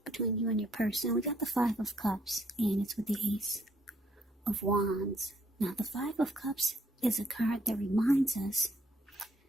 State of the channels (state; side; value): normal; both; correlation 0.68